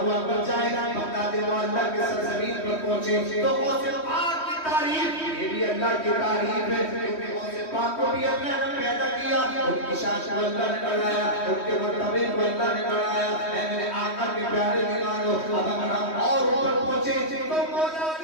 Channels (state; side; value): late; right; 3.2 ms